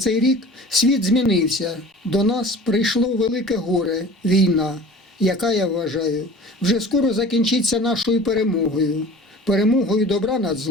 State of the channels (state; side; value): normal; both; correlation 0.41